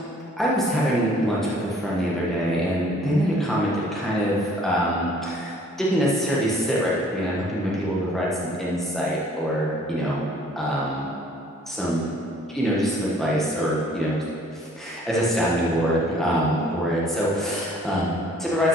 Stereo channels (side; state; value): both; normal; correlation 0.56